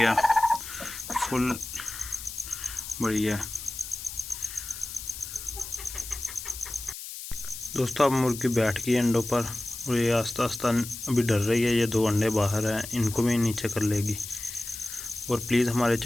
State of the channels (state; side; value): noise; left; hiss, 10 dB below the sound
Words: फुल बड़ी है। दोस्तों अब मुर्गी बैठ गई अंडों पर और ये आस्ता आस्ता अभी डर रही है। ये दो अंडे बाहर हैं, इनको भी नीचे कर लेगी। और प्लीज़ हमारे